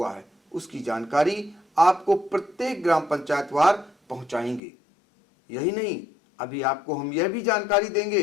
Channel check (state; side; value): drops out; right; at 4.6 s